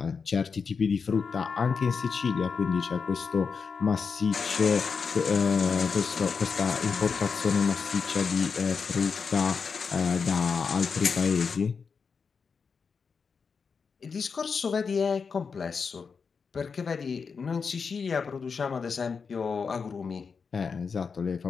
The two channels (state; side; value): quieter; right; 5.5 dB